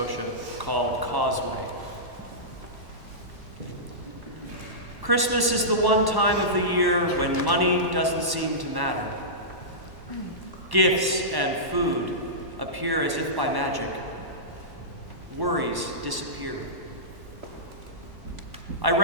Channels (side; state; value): left; late; 1.1 ms